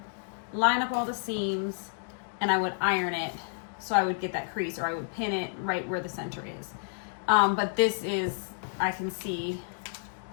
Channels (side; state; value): right; silent; digital silence